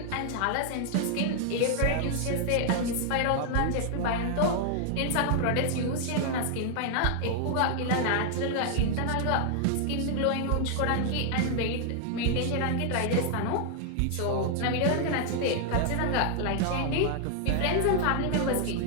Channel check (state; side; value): different; both; correlation 0.00